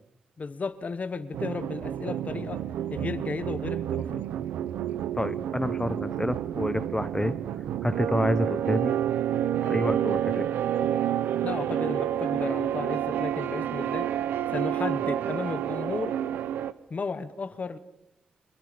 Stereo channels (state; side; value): quieter; left; 4.6 dB